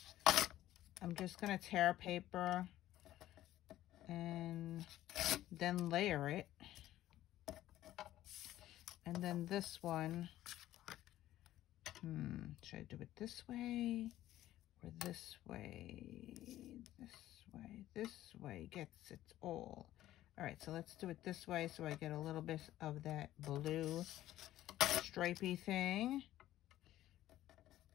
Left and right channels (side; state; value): right; quieter; 14.0 dB